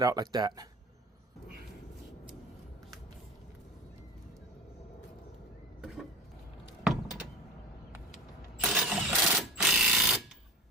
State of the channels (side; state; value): both; normal; correlation 0.33